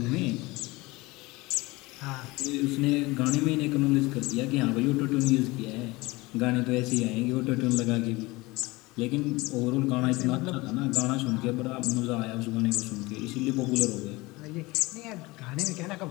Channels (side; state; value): right; quieter; 22.1 dB